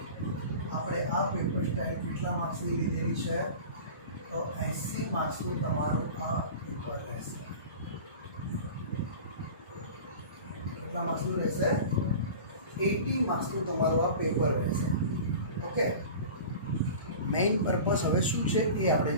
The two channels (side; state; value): both; inverted; correlation -0.36